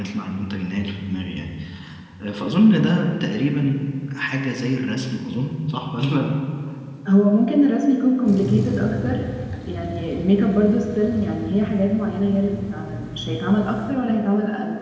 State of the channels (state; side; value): identical; both; correlation 1.00